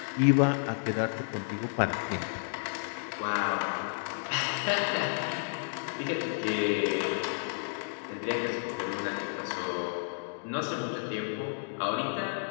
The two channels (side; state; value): right; silent; digital silence